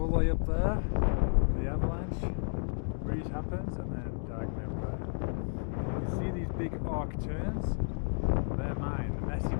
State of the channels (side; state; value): right; silent; 56 dB below the other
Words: the way up there, the avalanche, the breeze happens, and then diagonally up there. You can see these big arc turns, they're mine, the messy